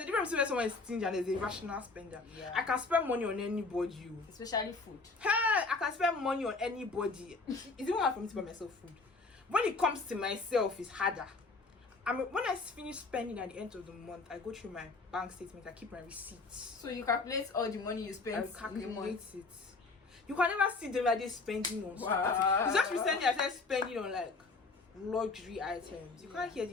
a difference between someone is stingy and there's a rational spender. Yeah. I can spend money on anybody. Especially food. Hey, I can spend money on anybody. It's even hard for me to buy myself food. When it comes to myself, it's harder. When I finish spending at the end of the month, I go through my bank statement. I keep my receipts. So you calculate all the money you spend. I calculate it. You can never see them like this spending on stuff. It's just recently I started spending on like luxury items. You can't hear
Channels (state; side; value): quieter; right; 3.8 dB